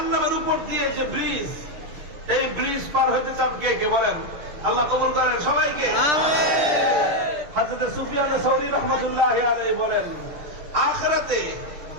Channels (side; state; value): left; late; 6.7 ms